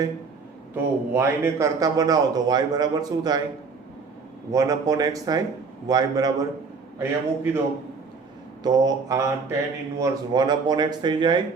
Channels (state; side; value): quieter; left; 4.8 dB